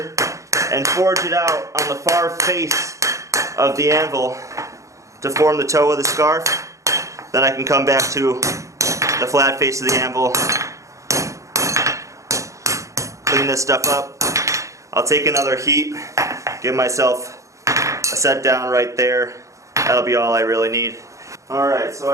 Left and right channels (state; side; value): late; left; 0.15 ms